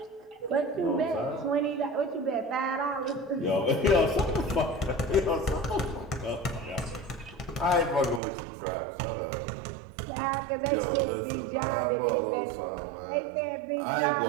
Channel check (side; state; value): left; drops out; at 8.2 s